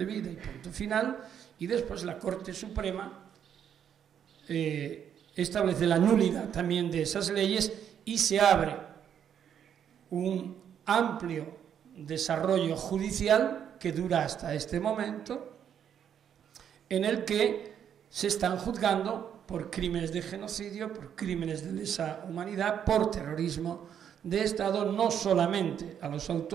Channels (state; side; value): quieter; left; 8.8 dB